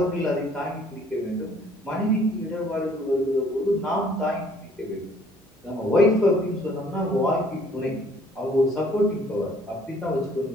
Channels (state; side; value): normal; both; correlation 0.59